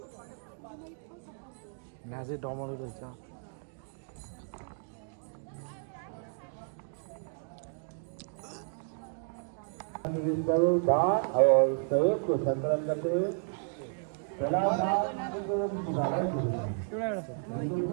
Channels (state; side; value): silent; left; 56 dB below the other